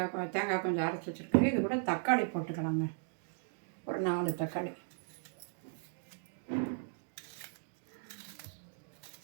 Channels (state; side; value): silent; left; digital silence